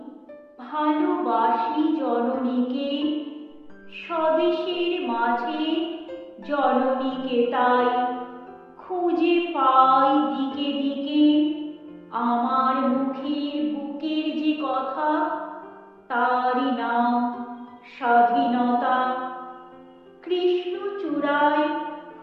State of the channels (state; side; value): identical; both; correlation 1.00